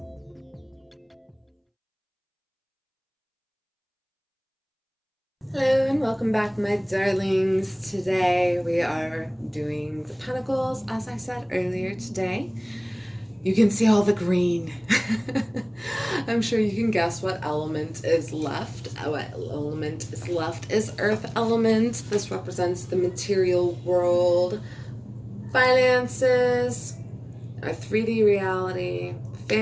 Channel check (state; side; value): identical; both; correlation 1.00